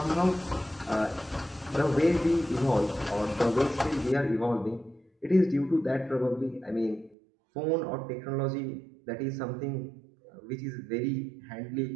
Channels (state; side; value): drops out; left; at 7.2 s